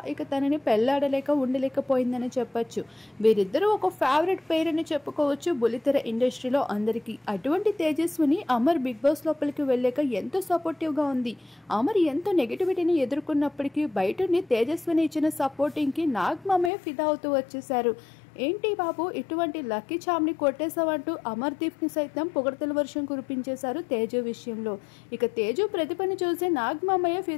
ఇక తనని పెళ్లాడలేక ఉండలేకపోయిందని చెప్పొచ్చు. వీరిద్దరూ ఒక ఫేవరెట్ పేర్ అని చెప్పుకోవచ్చు బుల్లితెర ఇండస్ట్రీలో అందరికీ. అటువంటి తేజస్విని అమర్ బిగ్ బాస్ లోపలికి వెళ్ళాక ఎంతో సపోర్టివ్గా ఉంది. అమర్ ఎంతో నెగిటివిటీని ఎదుర్కొన్నప్పటికీ బయటని తేజస్విని ఇచ్చిన సపోర్టింగ్కి నాగమామయ్య ఫిదా అవుతూ వచ్చేశారు. ఏంటి బాబు ఇటువంటి లక్కీ చామ్ని కొట్టేశావంటూ అమర్దీప్ని సైతం పొగడతల వర్షం కురిపించేశారు తేజు విషయంలో. ఇక తేజు ప్రతిభని చూసి నాగమామయ్య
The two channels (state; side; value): drops out; right; at 16.7 s